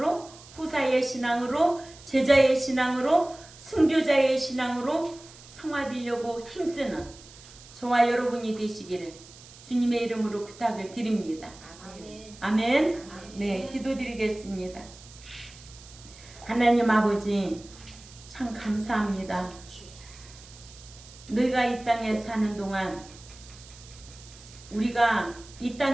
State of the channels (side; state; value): right; noise; hiss, 20 dB below the sound